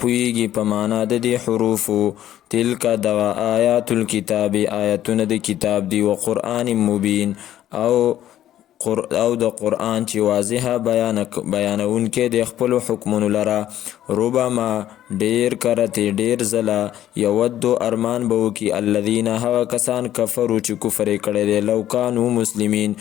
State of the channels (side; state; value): right; quieter; 12.2 dB